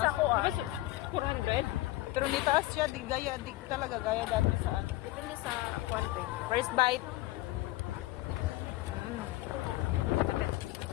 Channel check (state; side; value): quieter; right; 17.8 dB